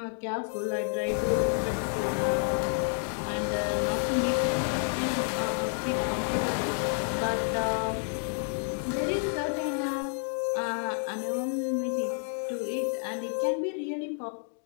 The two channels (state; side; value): silent; right; 58 dB below the other